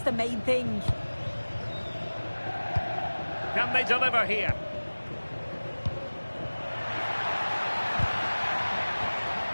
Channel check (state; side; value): inverted; both; correlation -1.00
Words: main thing. Can they deliver here?